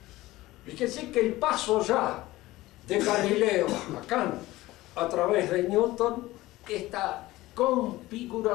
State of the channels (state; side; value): quieter; right; 17.9 dB